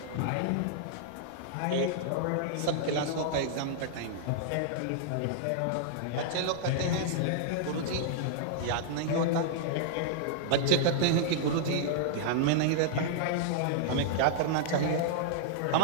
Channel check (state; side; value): different; both; correlation -0.01